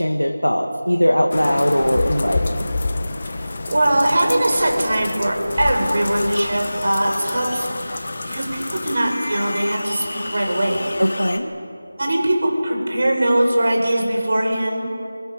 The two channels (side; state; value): both; inverted; correlation -0.97